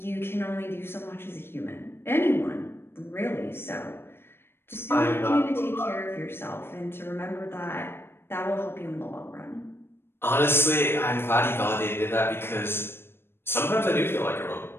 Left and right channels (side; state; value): right; late; 0.11 ms